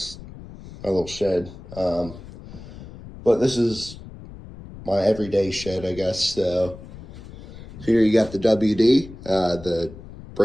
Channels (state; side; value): noise; left; rumble, 16 dB below the sound